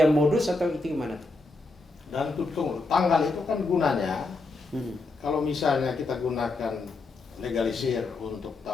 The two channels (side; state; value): right; quieter; 3.4 dB